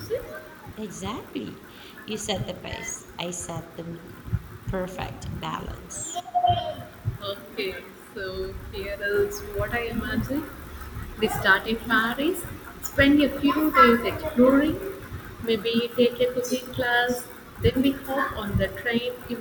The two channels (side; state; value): both; identical; correlation 1.00